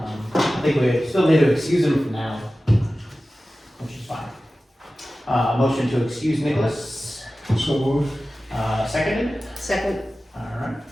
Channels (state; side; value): normal; both; correlation 0.95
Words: I think we still need to excuse him for now, which is fine. Motion to excuse Nicholas. So moved. Seconded. Second. All right.